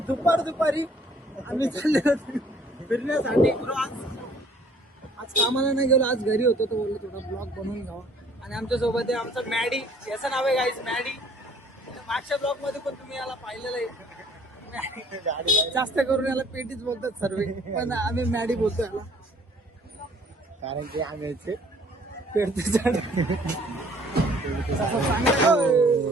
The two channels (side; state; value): both; normal; correlation 0.58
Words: दुपारी आम्ही चाललेलो फिरण्यासाठी. आज कामाला नाही गेलो, आज घरी होतो. तर बोललो थोडा ब्लॉग बनवून घ्यावा. आणि आमच्या सोबत आहे आमचा मॅडी. याचं नाव आहे गाईज मॅडी. मागच्या ब्लॉग मध्ये पण तुम्ही याला पाहिलेलं आहे. जास्त करून याला पेटीच बोलतात सर्व, पण आम्ही मॅडी बोलतो याला, कारण की आम्ही पेडते झाड.